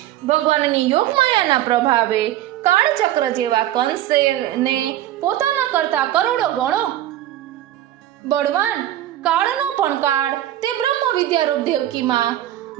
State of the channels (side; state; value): left; quieter; 13.3 dB